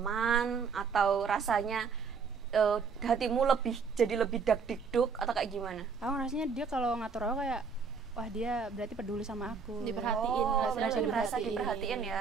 atau rasanya hatimu jadi lebih dak-dikduk, atau kayak gimana? Aku rasanya dia kalau ngatur aku kayak wah, dia berarti peduli sama aku, Diperhatiin. Berarti merasa diperhatiin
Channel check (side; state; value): left; quieter; 5.5 dB